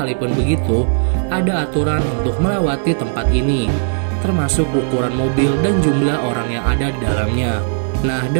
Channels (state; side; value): silent; left; 68 dB below the other